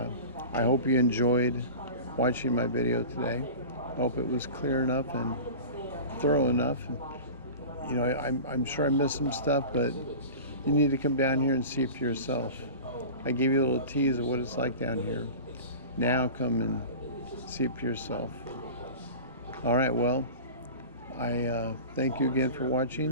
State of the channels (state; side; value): inverted; both; correlation -0.34